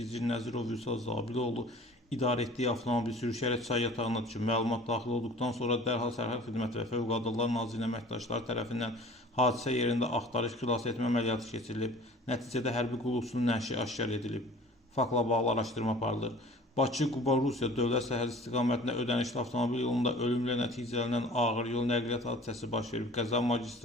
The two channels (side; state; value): both; normal; correlation 0.46